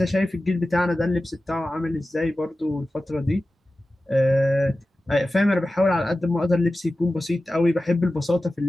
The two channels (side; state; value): both; normal; correlation 0.94